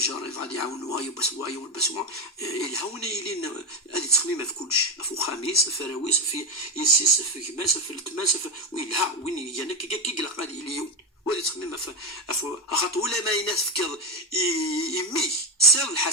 غادي يعاونوا وايو بس الهونا يلين هذه تخميمه في كلش في خميس في فراويس في يسيس في كماس في التماس ويلها وين يانا كي غادي اليوم وهذه تخميمه في خاطر ولا ما يناس فكر يمي سر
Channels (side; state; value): both; normal; correlation 0.11